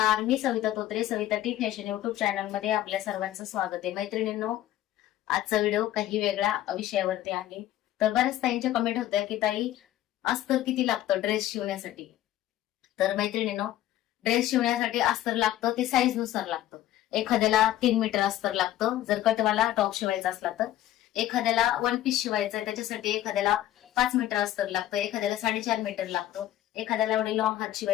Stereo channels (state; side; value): quieter; right; 13.4 dB